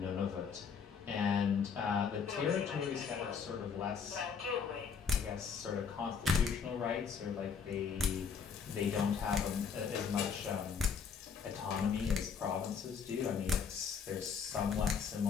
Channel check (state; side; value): quieter; right; 6.3 dB